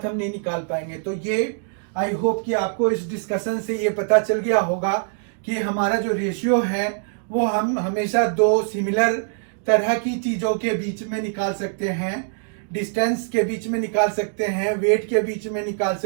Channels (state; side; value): silent; left; digital silence